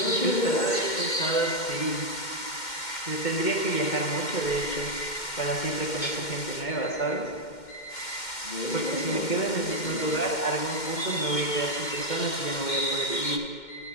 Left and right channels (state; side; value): late; right; 2.1 ms